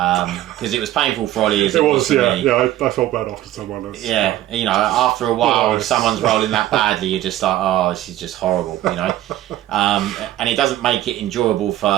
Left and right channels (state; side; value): quieter; left; 13.9 dB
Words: it was painful for Ollie as it was for me. Yeah. I felt bad after someone else. Yeah, after a while, if Nice. someone's rolling that badly, you're just like, oh, this is just horrible, and it doesn't make it enjoyable for